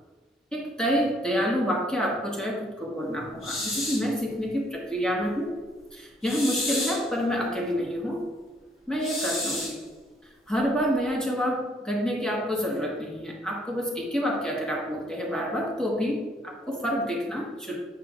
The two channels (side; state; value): both; normal; correlation 0.66